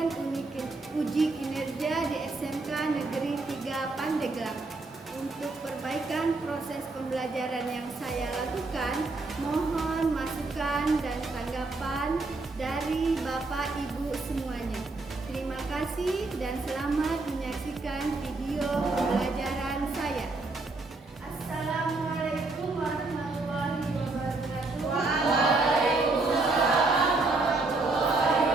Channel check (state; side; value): quieter; left; 3.4 dB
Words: uji kinerja di SMK Negeri 3 Pandeglang. Untuk perbaikan proses pembelajaran yang saya lakukan, mohon masukan dan tanggapan dari Bapak Ibu semuanya. Terima kasih dan selamat menyaksikan video pembelajaran saya. Assalamualaikum warahmatullahi wabarakatuh. Waalaikumsalam warahmatullahi